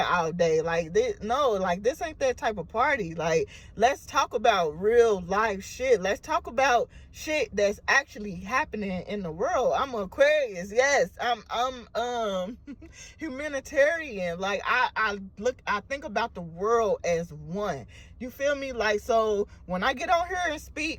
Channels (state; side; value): identical; both; correlation 1.00